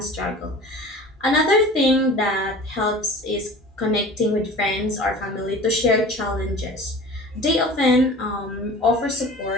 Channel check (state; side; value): normal; both; correlation 0.40